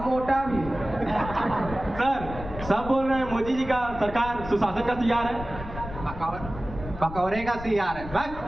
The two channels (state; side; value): noise; left; rumble, 11 dB below the sound